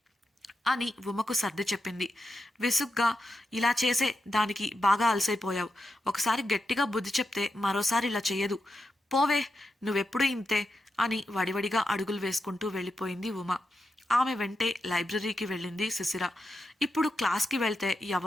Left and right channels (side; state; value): both; normal; correlation 0.87